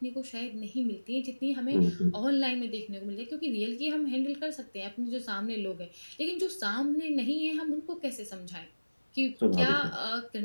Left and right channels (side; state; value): both; inverted; correlation -1.00